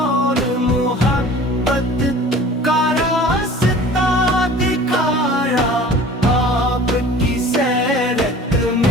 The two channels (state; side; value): normal; both; correlation 0.44